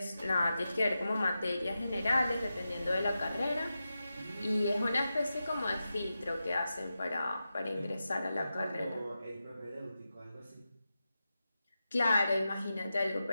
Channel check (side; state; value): both; inverted; correlation -0.91